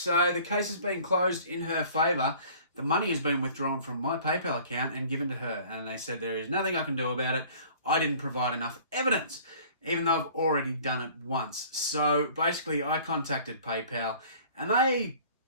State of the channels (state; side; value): inverted; both; correlation -0.49